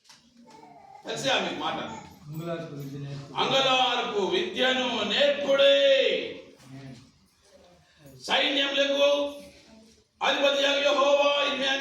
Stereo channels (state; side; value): identical; both; correlation 1.00